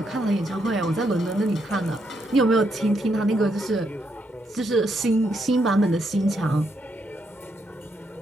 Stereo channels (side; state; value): both; normal; correlation 0.77